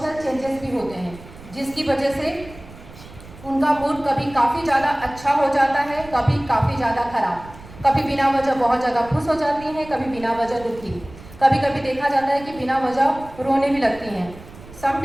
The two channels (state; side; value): noise; right; rumble, 18 dB below the sound